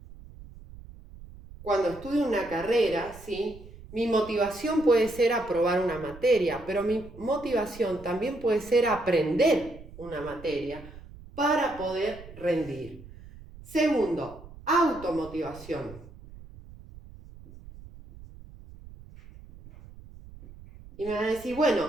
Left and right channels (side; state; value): right; noise; rumble, 18 dB below the sound